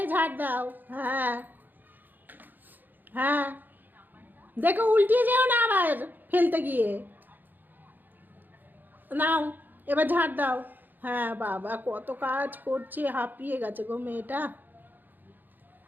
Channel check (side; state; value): left; late; 0.088 ms